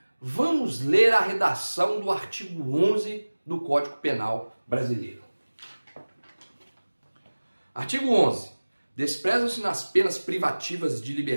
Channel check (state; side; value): inverted; both; correlation -1.00